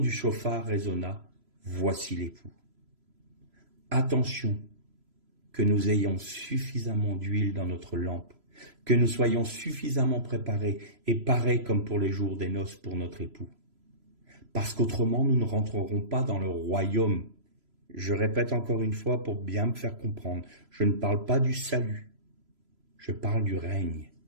chauffard résonna, voici l'époux. Attention que nous ayons suffisamment d'huile dans notre lampe, que nous soyons suffisamment préparés et parés comme pour les jours des noces pour notre époux. Parce qu'autrement, nous ne rentrerons pas dans le royaume. Je répète encore une fois pour bien me faire comprendre, je ne parle pas du salut, je parle du règne.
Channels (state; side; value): late; left; 3.0 ms